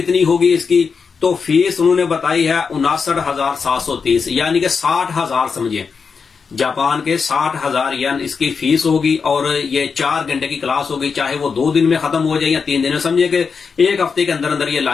होगी इसकी, तो फीस उन्होंने बताई है 59,730, यानी कि 60,000 समझिए, जापान के 60,000 येन इसकी फीस होगी। और ये 4 घंटे की क्लास होगी, चाहे वो 2 दिन में खत्म हो जाए या 3 दिन में, समझिए कि 1 हफ्ते के अंदर अंदर ये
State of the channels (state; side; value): quieter; right; 5.5 dB